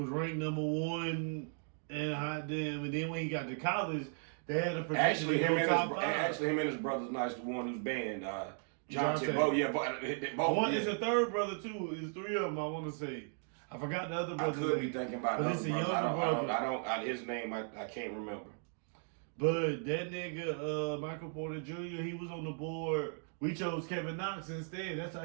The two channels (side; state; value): left; silent; 54 dB below the other